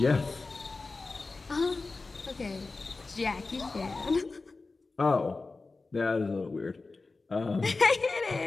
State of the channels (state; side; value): quieter; right; 3.7 dB